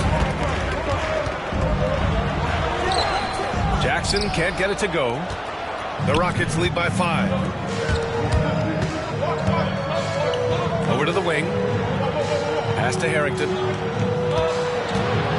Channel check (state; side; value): identical; both; correlation 1.00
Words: Jackson can't get it to go. The Rockets lead by 5. Over to the wing. Pass to Harrington.